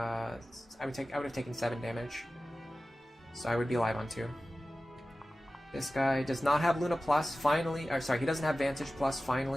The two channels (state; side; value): normal; both; correlation 0.96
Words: taken 7 damage. So I would be alive on 2. This guy does not have Luna Plus, finally. Or sorry, he doesn't have Vantage Plus,